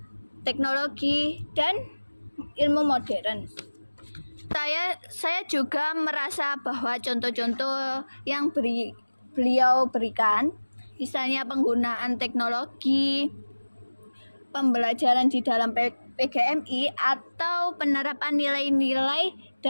teknologi, dan ilmu modern. Saya juga merasa bahwa contoh-contoh yang beliau berikan, misalnya penggunaan teknologi, pembelajaran di dalam PGMI, atau penerapan nilai-nilai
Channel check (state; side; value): inverted; both; correlation -1.00